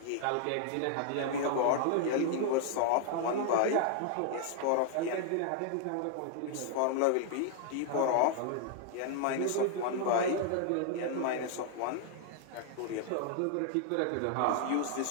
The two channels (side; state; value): both; different; correlation 0.00